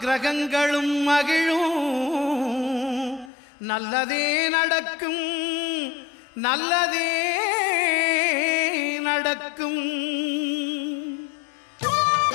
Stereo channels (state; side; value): drops out; right; at 3.3 s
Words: மகிழும். நல்லதே நடக்கும், நல்லதே நடக்கும்.